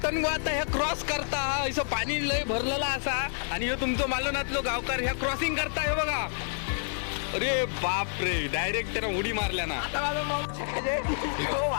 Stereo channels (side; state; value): right; silent; 59 dB below the other